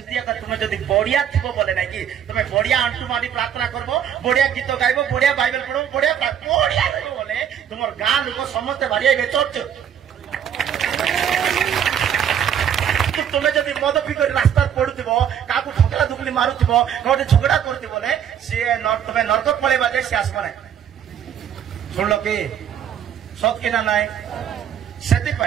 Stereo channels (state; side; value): quieter; left; 9.0 dB